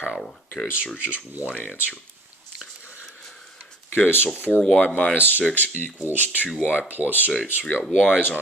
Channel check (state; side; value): normal; both; correlation 0.49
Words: okay, so there's just one answer. Okay, so 4y minus 6 equals 2y plus 8. So we got y's